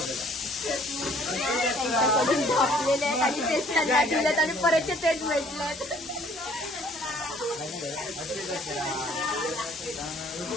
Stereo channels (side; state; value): both; normal; correlation 0.58